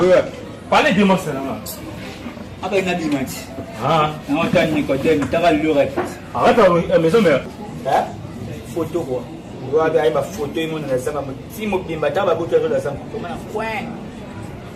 Parlez de moi, c'est là. Ah ben, il y a des matchs. Ah. On a un Nicodème, tu as le reste. Arrête la maison mère. Hein? Photo quoi. Tu vois, il y a une photo, il y a une photo. Si je suis là, je vais faire un point.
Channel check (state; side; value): identical; both; correlation 1.00